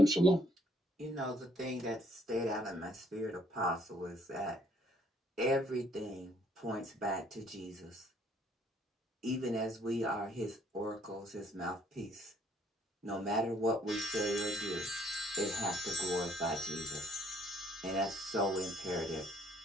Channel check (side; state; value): both; normal; correlation 0.64